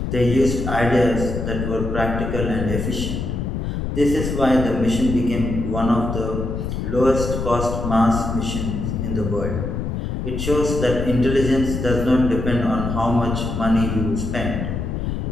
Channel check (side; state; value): left; noise; rumble, 3 dB below the sound